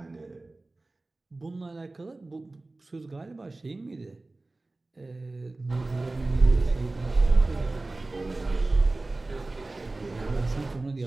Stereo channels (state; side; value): quieter; left; 3.1 dB